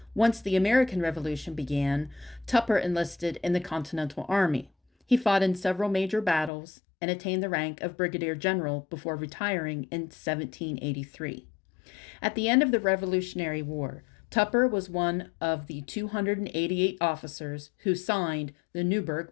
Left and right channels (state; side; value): drops out; right; at 6.5 s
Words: Once the American Revolution began, Tupper enlisted in the Continental Army. He fought in several major battles and attained the rank of brigadier general before retiring in 1783. At the end of the Revolutionary War, Tupper was one of the 288 officers who signed the